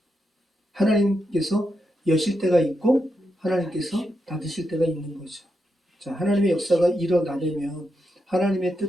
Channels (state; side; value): normal; both; correlation 0.84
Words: 하나님께서 여실 때가 있고 하나님께서 닫으실 때가 있는 거죠. 자, 하나님의 역사가 일어나려면 하나님의